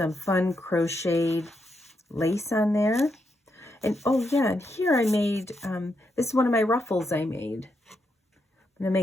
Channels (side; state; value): both; normal; correlation 0.81